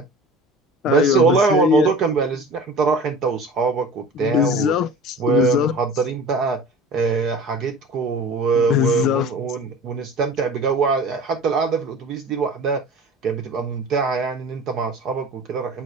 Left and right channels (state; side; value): normal; both; correlation 0.39